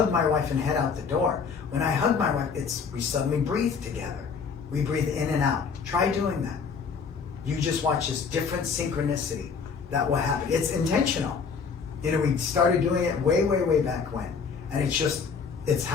my wife and head out the door. When I hug my wife, we suddenly breathe together. We breathe in and out. Try doing that. You just watch this different synchronicity that will happen. It's intentional. You know, we started doing it way, way, way back when. And it's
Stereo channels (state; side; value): quieter; right; 5.7 dB